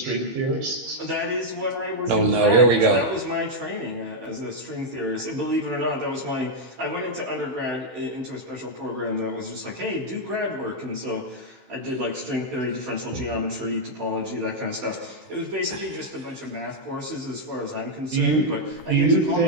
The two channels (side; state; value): left; late; 16 ms